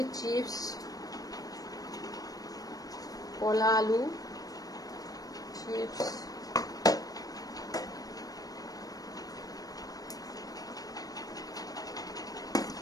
চিপস, কলা আলু চিপস,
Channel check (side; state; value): right; late; 0.18 ms